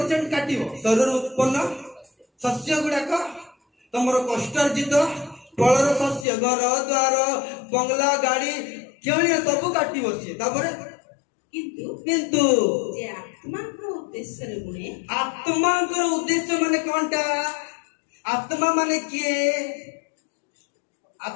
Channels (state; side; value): drops out; right; at 6.2 s